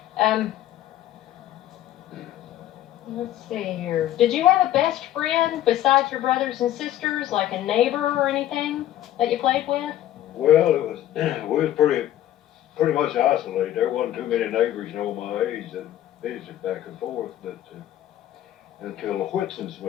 Let's see here. Did you have a best friend besides your brothers and sisters, like a neighbor or anything that you played with? Well, we was pretty much isolated. There wasn't too many neighbors, you know, my age that visited back and forth, but until the Whitsons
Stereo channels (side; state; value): right; quieter; 12.8 dB